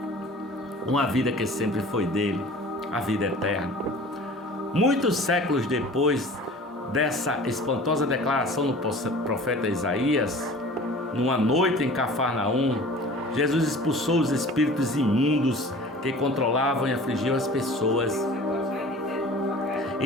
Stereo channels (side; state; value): both; normal; correlation 0.43